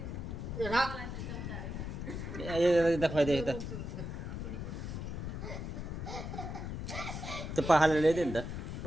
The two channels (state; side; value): noise; left; rumble, 5 dB below the sound